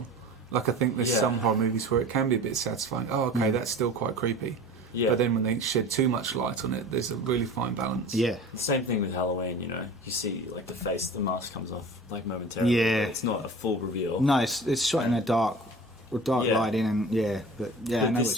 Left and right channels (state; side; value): normal; both; correlation 0.39